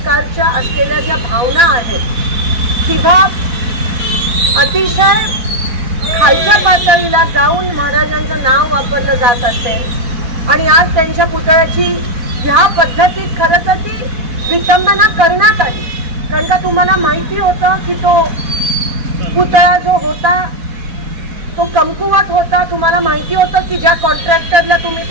असलेल्या ज्या भावना आहेत किंवा अतिशय खालच्या पातळीला जाऊन महाराजांचं नाव वापरलं जात असेल आणि आज त्यांच्या पुतळ्याची ह्या पद्धतीत खरं तर ती विटंबना करण्यात आली. कारण का तुम्हाला माहिती होतं की तो पुतळा जो होता तो कमकुवत होता. तुम्हाला माहिती होतं की ज्या कॉन्ट्रॅक्टरला तुम्ही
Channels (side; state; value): left; late; 4.1 ms